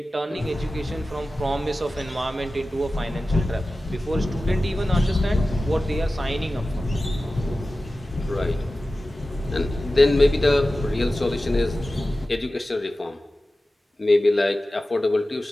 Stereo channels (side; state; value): both; normal; correlation 0.95